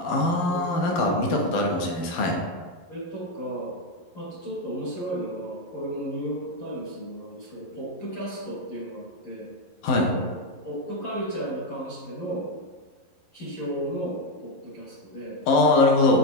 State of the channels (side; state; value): right; late; 11 ms